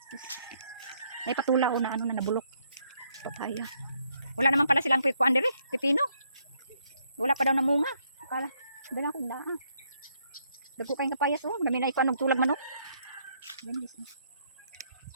May patula oh na ano na nabulok. Papaya. Wala naman pala silang kuan dire, pipino. Wala pa daw namunga. Kala, binak ko na. Dagko kayong kapayas oh, dami na iko anog tulag manok.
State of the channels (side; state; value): both; inverted; correlation -0.72